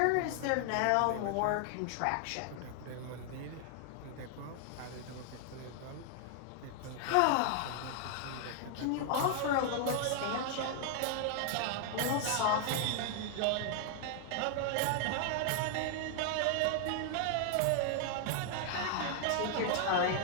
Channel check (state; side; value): different; both; correlation 0.00